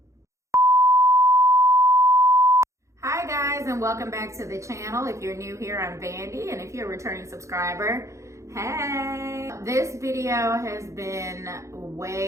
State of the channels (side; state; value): left; late; 0.15 ms